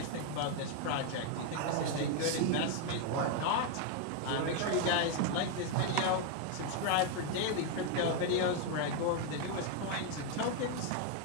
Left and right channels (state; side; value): different; both; correlation 0.01